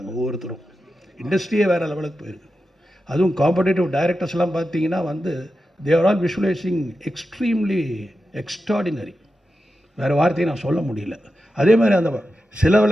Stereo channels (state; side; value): normal; both; correlation 0.91